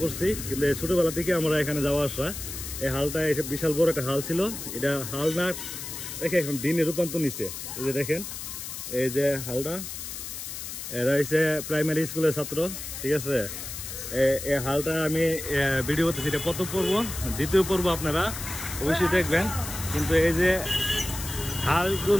করছি, কিন্তু এই ছোটোবেলা থেকে আমরা এখানে যাওয়া আসা। এই হালটা এসে বিশাল বড় একটা হাল ছিল। এটা হাল না দেখে এখন দিনে রূপান্তর নিচ্ছে। এই যে দেখেন এই যে হালটা, এরা হচ্ছে প্রাইমারি স্কুলের ছাত্র, ঠিক আছে। এই হালটা আমি ভিডিও করতেছি, এটা প্রথম পর্ব। দ্বিতীয় পর্ব আপনারা অবশ্যই দেখবেন। কিন্তু এই যে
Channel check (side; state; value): left; noise; hiss, 8 dB below the sound